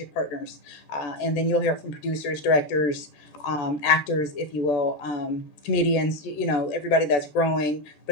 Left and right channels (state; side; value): late; right; 14 ms